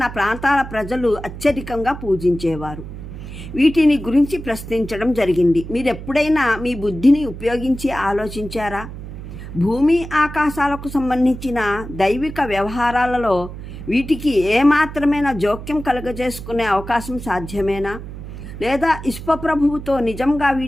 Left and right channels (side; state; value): right; noise; hum, 11 dB below the sound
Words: ప్రాంతాల ప్రజలు అత్యధికంగా పూజించేవారు. వీటిని గురించి ప్రశ్నించడం జరిగింది. మీరెప్పుడైనా మీ బుద్ధిని ఉపయోగించి ఆలోచించారా? భూమి ఆకాశాలకు సంబంధించిన దైవిక వ్యవహారాలలో వీటికి ఏమాత్రమైనా జోక్యం కలుగజేసుకునే అవకాశం సాధ్యమేనా? లేదా విశ్వప్రభువుతో నిజంగా